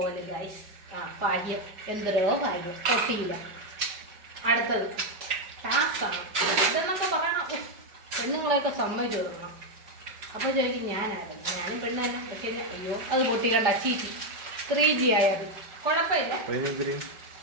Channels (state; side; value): late; left; 5.1 ms